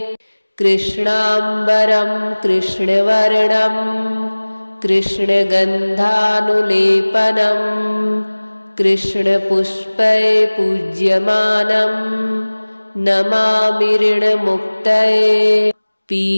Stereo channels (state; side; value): inverted; both; correlation -1.00